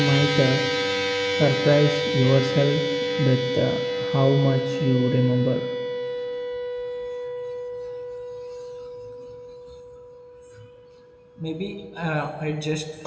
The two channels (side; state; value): both; identical; correlation 1.00